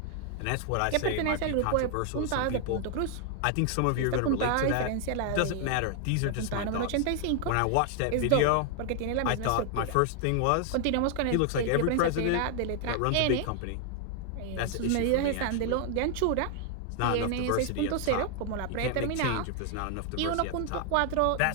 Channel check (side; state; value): both; different; correlation 0.00